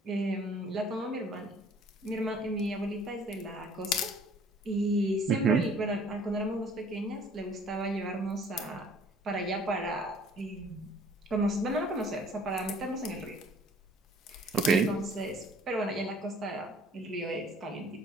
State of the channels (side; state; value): both; normal; correlation 0.55